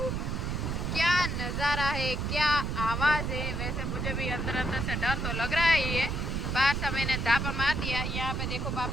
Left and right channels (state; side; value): noise; right; rumble, 1 dB below the sound